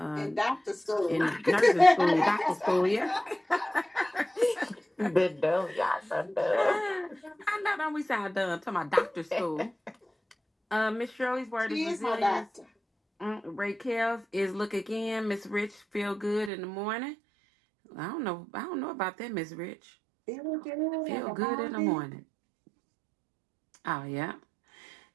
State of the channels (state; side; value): drops out; left; at 16.5 s